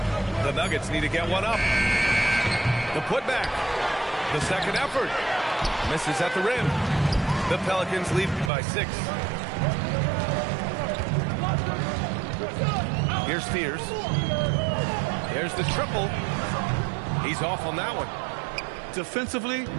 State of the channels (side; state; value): left; drops out; at 8.5 s